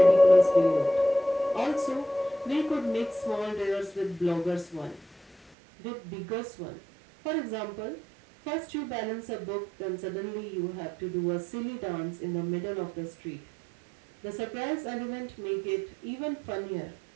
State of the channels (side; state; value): left; drops out; at 5.6 s